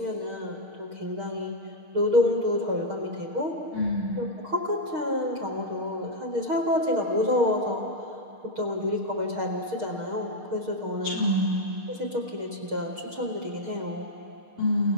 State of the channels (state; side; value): late; left; 6.5 ms